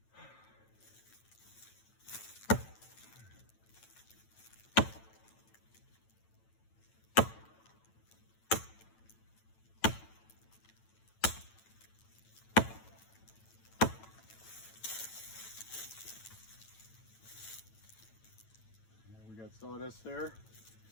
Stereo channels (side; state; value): right; late; 9.0 ms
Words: Got sawdust there,